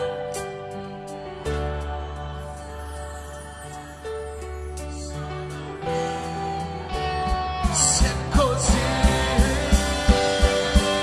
Se è così.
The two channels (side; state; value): both; identical; correlation 1.00